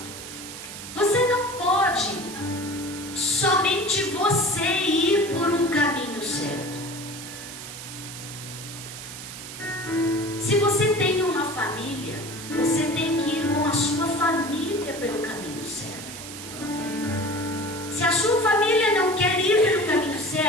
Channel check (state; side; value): noise; right; hiss, 11 dB below the sound